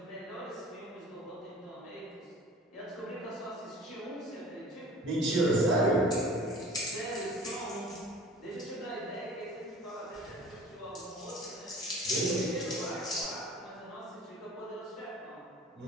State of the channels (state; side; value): normal; both; correlation 0.45